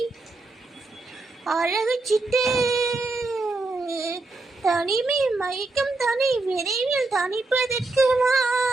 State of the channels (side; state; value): left; quieter; 3.3 dB